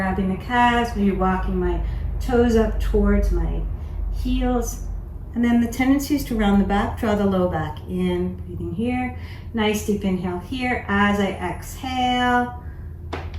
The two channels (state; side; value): identical; both; correlation 1.00